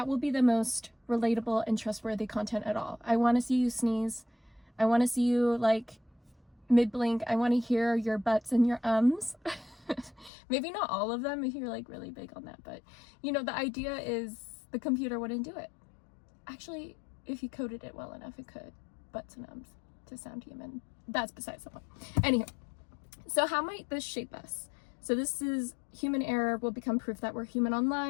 will be the most relatable and trustworthy content at all. I want to see you sneeze. I want to see you mid-blink. I want to hear your butts and your ums. Maybe not all of them if you're really big on that, but the idea is the computer wouldn't do it. Actually, if you coded it well enough, it could. Butts and ums to sound human. That's besides the point. Anywho, so how might this shape us? So this is human error will become proof that we're human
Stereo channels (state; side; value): drops out; right; at 10.3 s